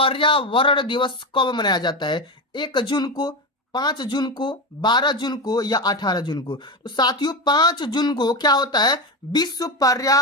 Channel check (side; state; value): both; normal; correlation 0.17